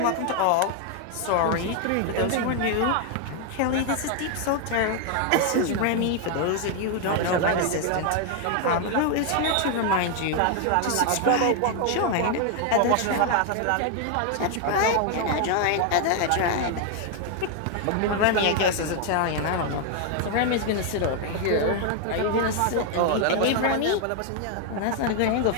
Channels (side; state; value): both; different; correlation 0.00